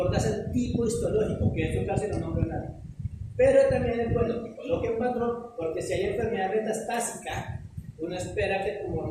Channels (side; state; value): both; identical; correlation 1.00